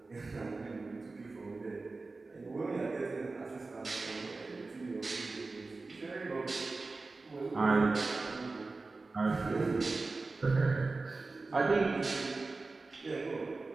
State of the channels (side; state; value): left; quieter; 3.6 dB